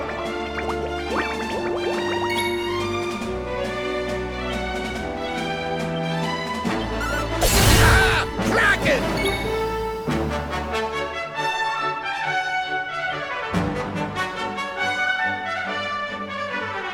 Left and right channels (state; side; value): identical; both; correlation 1.00